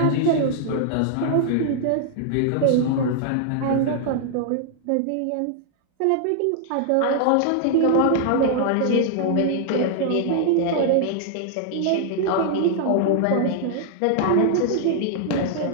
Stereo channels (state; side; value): different; both; correlation -0.01